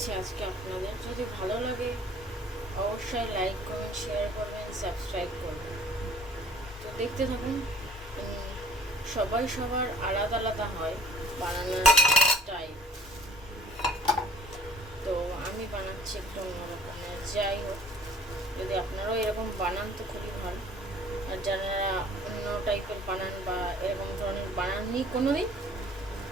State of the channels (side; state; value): both; normal; correlation 0.52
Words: আজকে আপনাদের। যদি ভালো লাগে অবশ্যই লাইক, কমেন্ট, শেয়ার করবেন, সাবস্ক্রাইব করবেন। তো দেখতে থাকুন। সবাই সবার আলাদা আলাদা হয় বানানোর টাইপ। তো আমি বানাচ্ছি একটু অন্যরকমের। যাই হোক, যদি আপনারাও এরকম বানান তো খুবই ভালো। আর যারা অন্য টাইপের বানান বা এরকম ধরনের বানাননি কোনো দিন,